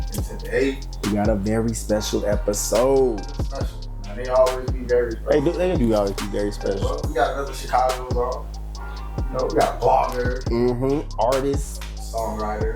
today, we got a very special episode. Special. Man, they always be very special. They do always be very special. Well, we got another Chicago's on. You know, we got a blogger. Artist.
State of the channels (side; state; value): both; identical; correlation 1.00